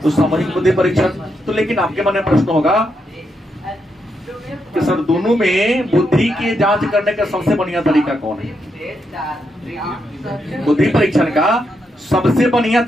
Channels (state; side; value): normal; both; correlation 0.81